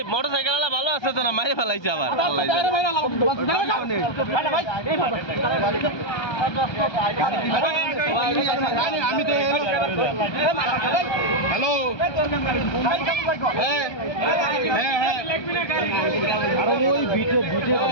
মোটরসাইকেল আলা ভালো আছে তো না মাইরে ফেলাইছে আবার হ্যালো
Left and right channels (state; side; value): late; right; 1.2 ms